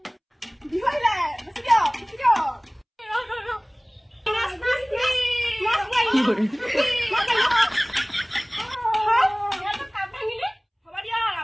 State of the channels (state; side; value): identical; both; correlation 1.00